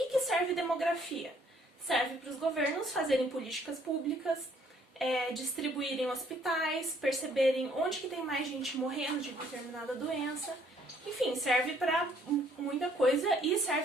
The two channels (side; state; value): both; normal; correlation 0.64